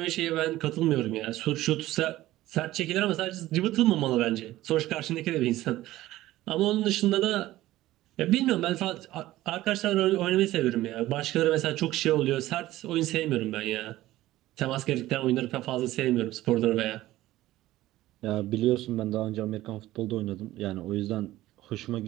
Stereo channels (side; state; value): left; quieter; 15.9 dB